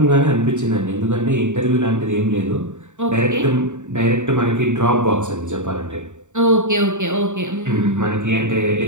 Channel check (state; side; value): late; left; 0.85 ms